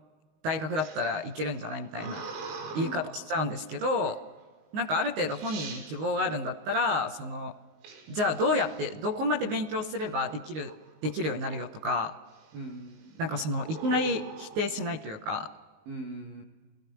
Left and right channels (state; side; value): late; left; 19 ms